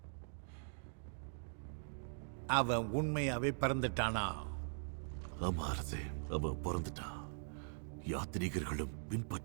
அவன் உண்மையாவே பிறந்துட்டானா? ஆமா அரசே, அவன் பிறந்துட்டான். யாத்ரீகர்களும்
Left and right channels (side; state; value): left; silent; digital silence